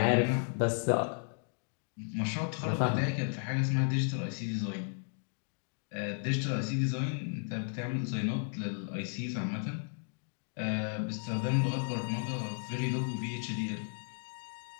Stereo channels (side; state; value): right; silent; 55 dB below the other